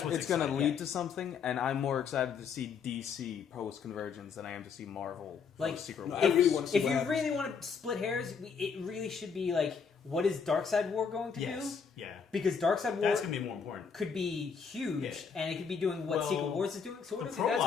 gonna what's it's gonna exciting. lead Yeah. to something, and I'm more excited to see DC post Convergence than I am to see Marvel Like, post Secret No, Wars. I really want to see if what you happens. really want to split hairs, it really should be like, what is Darkseid War going to Yes. do? Yeah. Because Darkseid War That's going to be more important. could be huge, Yeah. and it could be doing what Well, Secret Wars is doing. So what The is it? That's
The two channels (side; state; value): right; quieter; 6.1 dB